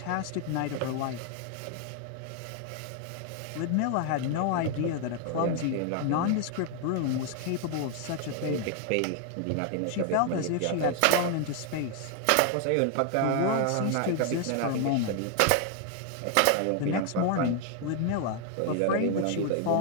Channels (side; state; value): both; different; correlation 0.00